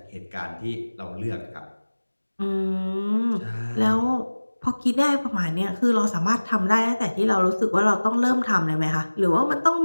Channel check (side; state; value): both; inverted; correlation -1.00